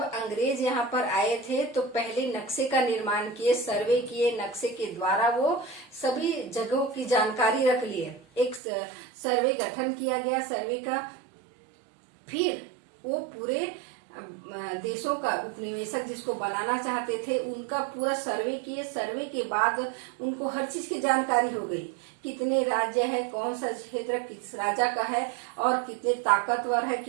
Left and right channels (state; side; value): drops out; left; at 8.6 s